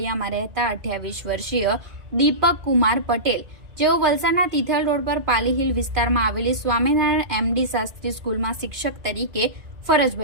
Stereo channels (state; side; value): late; left; 2.4 ms